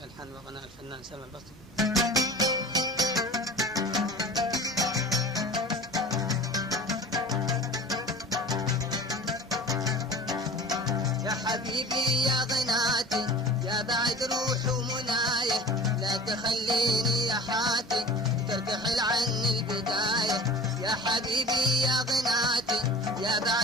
ألحان وغناء الفنان سلمى البسطي. يا حبيبي يا غناتي يا بعد روح ومناية، لا تخليني يا حاتي ترتحل عني البداية. يا حبيبي يا غناتي يا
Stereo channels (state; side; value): normal; both; correlation 0.39